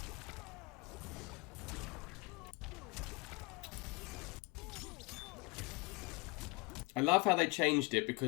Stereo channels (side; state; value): right; quieter; 24.6 dB